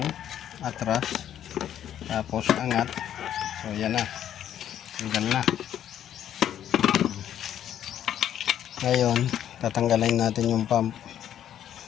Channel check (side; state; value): right; quieter; 10.5 dB